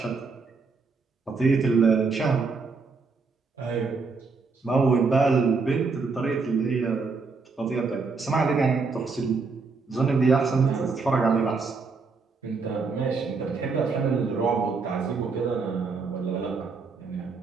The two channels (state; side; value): quieter; left; 4.5 dB